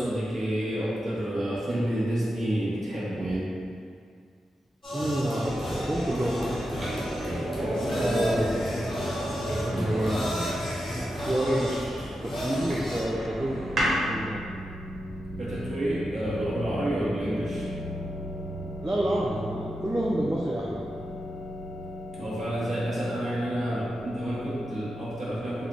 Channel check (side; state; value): both; normal; correlation 0.89